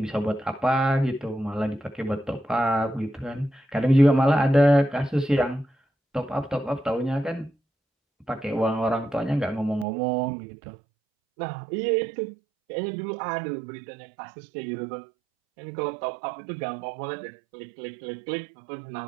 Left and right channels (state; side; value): drops out; left; at 9.9 s